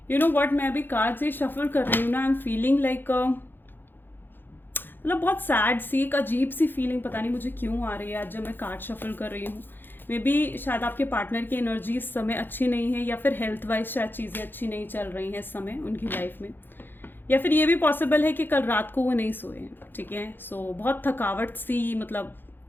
You know what, मैं अभी कार्ड से शफल कर रही हूँ ना, आई एम फीलिंग लाइक मतलब बहुत सैड सी, एक अजीब सी फीलिंग पता नहीं मुझे क्यों आ रही है आज जब मैं कार्ड शफल कर रही हूँ। मे बी शायद आपके पार्टनर की एनर्जी इस समय अच्छी नहीं है, या फिर हेल्थ वाइज शायद चीज़ें अच्छी नहीं चल रही हैं इस समय उनकी लाइफ में, या फिर ये भी पॉसिबल है कि कल रात को वो नहीं सोए हैं, ठीक है। सो बहुत थकावट सी, मतलब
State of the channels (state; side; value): late; right; 0.097 ms